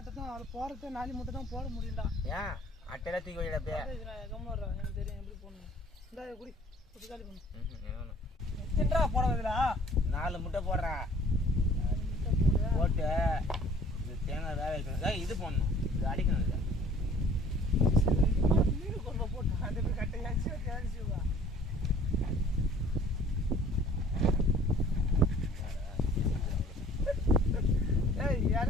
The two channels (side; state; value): both; normal; correlation 0.53